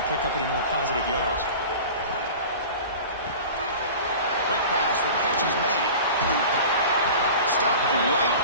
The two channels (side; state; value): both; inverted; correlation -0.37